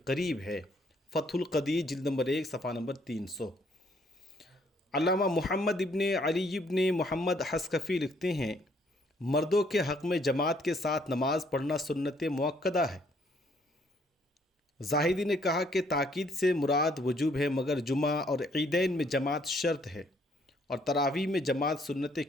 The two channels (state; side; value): normal; both; correlation 0.66